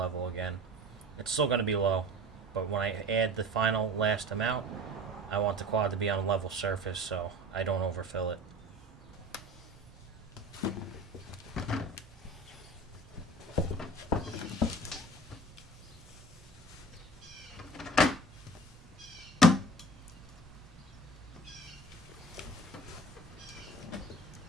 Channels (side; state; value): both; normal; correlation 0.40